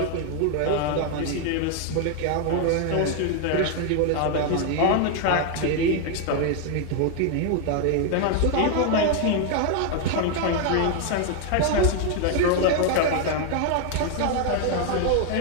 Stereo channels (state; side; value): different; both; correlation 0.00